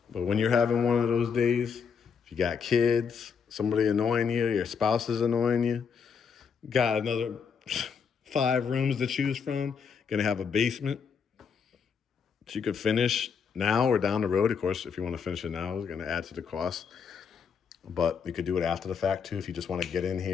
but when you're having one of those days, if you got kids, somebody annoying you, your spouse is annoying you, got another 5 rooms to choose from, gonna have a basement that you could finish now or down the road. Of course, if you want to finish it now, it's gonna add to the cost. But you could do it after the fact too, if you just want to get in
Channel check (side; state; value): right; quieter; 6.4 dB